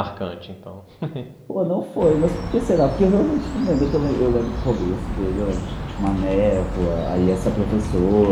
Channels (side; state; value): both; identical; correlation 1.00